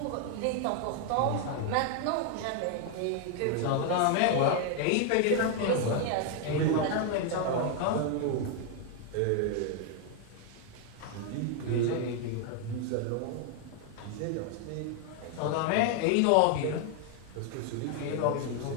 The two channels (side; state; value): both; different; correlation 0.01